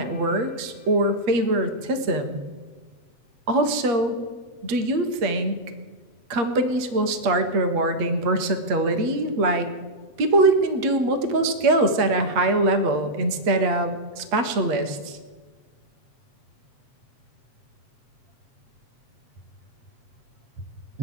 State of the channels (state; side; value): late; left; 8.4 ms